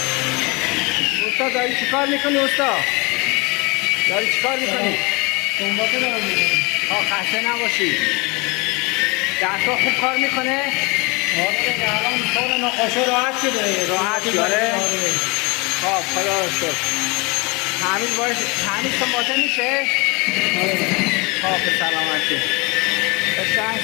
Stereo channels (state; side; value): quieter; right; 27.6 dB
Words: استاد داری چی کار میکنی؟ استاد داری چی کار میکنی؟ سنباته دارم میکنی. خسته نباشی. دستا خوب کار میکنه؟ آره الان کار نقاشه راحت شده. راحت شده؟ خب خدا رو شکر. تعمیر سنباته میشه؟ خب به سلامتی. قشنگ